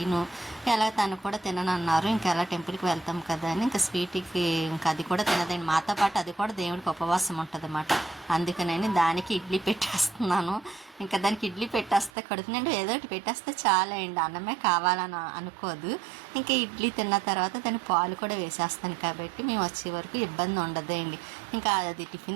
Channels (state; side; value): drops out; left; at 12.1 s